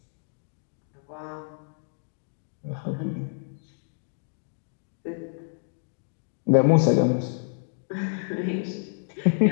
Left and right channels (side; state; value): right; silent; digital silence